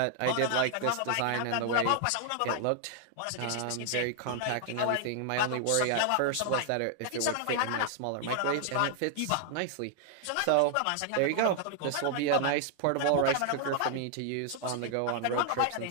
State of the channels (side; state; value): both; different; correlation 0.00